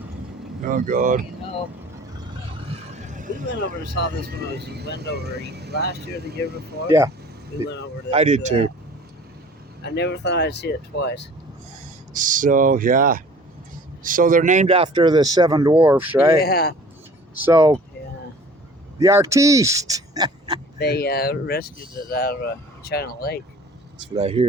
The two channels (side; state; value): both; normal; correlation 0.48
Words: Oh, God. No. We went over and saw this when I was in Wendover last year, the year before. Yeah. We went over to I did too. I never thought I'd see it twice. So, yeah. So they're named after the seven dwarfs, right? Yeah. So, Yeah. the artiste. They rescued it out of China Lake. That's what I